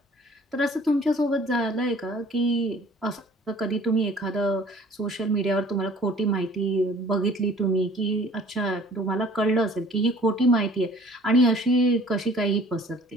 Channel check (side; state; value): both; normal; correlation 0.51